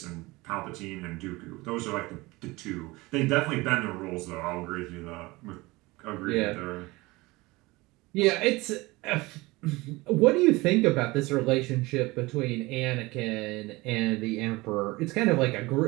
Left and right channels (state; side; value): quieter; left; 21.9 dB